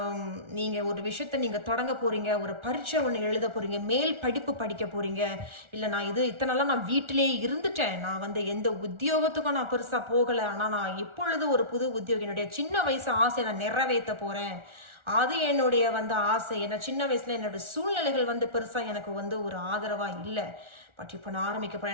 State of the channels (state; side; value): late; left; 1.4 ms